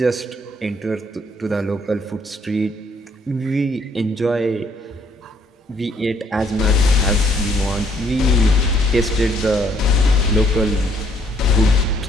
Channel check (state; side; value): normal; both; correlation 0.66